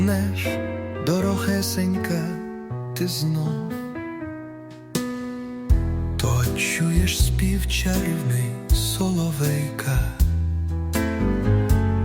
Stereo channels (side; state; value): both; identical; correlation 1.00